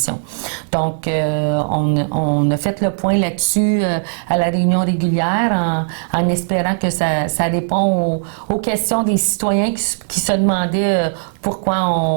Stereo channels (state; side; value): silent; left; digital silence